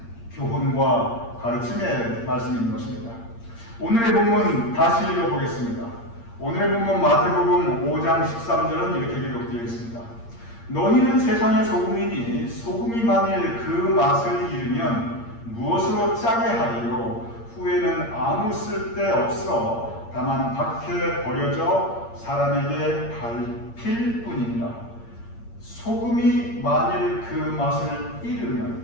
교훈과 가르침의 말씀인 것입니다. 오늘의 본문 다시 읽어보겠습니다. 오늘의 본문 마태복음 5장 13절은 이렇게 기록되어 있습니다. 너희는 세상의 소금이니 소금이 만일 그 맛을 잃으면 무엇으로 짜게 하리요? 후에는 아무 쓸데 없어 다만 밖에 버려져 사람에게 밟힐 뿐이니라. 소금이 만일 그 맛을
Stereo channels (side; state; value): right; late; 8.7 ms